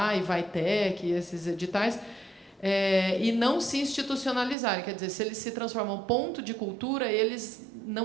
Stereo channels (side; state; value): left; drops out; at 4.5 s